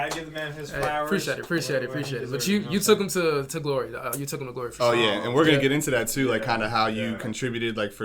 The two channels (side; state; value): both; identical; correlation 1.00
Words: give the man his flowers. Appreciate it. But you took him to glory. You took him to glory for sure. Oh, yeah. And we're going to get into that, too, like kind of how you contributed, like,